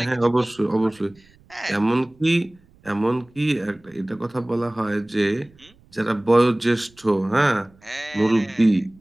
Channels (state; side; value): noise; right; rumble, 30 dB below the sound